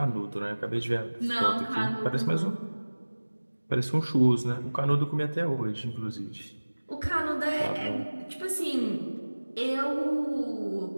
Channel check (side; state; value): both; inverted; correlation -1.00